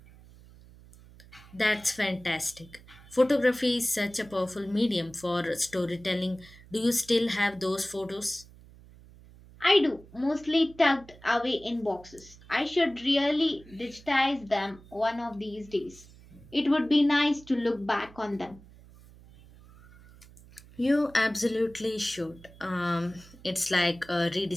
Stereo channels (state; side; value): noise; right; hum, 22 dB below the sound